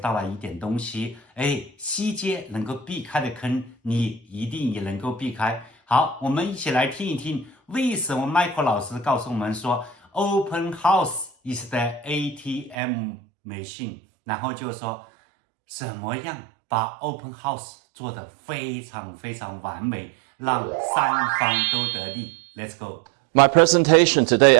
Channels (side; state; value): left; drops out; at 12.8 s